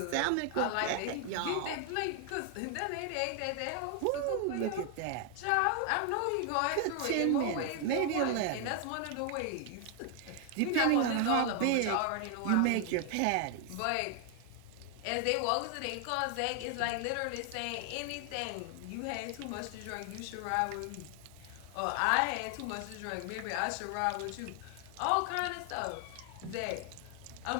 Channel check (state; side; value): different; both; correlation 0.00